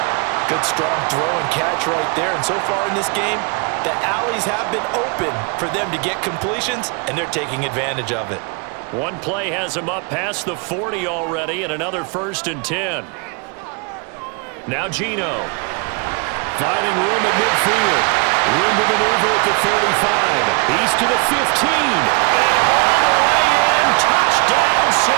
Good strong throw and catch right there, and so far in this game, the alleys have been open for them to get completions, and they're taking advantage of it. One play has him up past the 40 already, and another 1st and 10. Now Geno. Finding room at midfield. Room to maneuver at the 35. He's to the 15. And all the way in. Touchdown,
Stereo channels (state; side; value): quieter; left; 33.2 dB